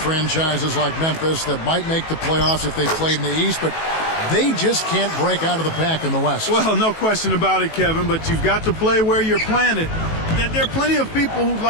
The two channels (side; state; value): right; late; 18 ms